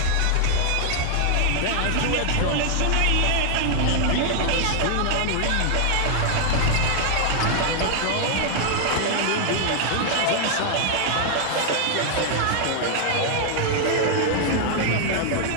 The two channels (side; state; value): both; different; correlation -0.01